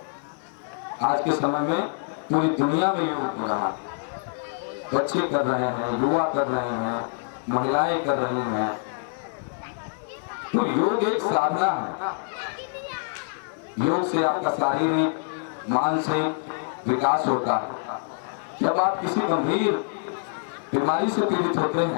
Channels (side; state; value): right; silent; digital silence